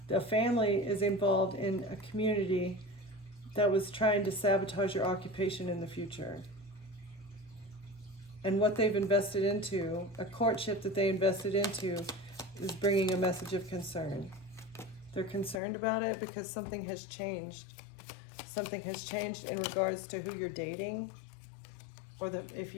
the family is involved in a community that was trying to sabotage your occupation in the future. And what they've invested into, a courtship that they invested into, is bringing a message of concern. They're concerned about it because something has changed. Something has changed in regards to who you're dating, or if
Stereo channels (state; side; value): drops out; right; at 15.6 s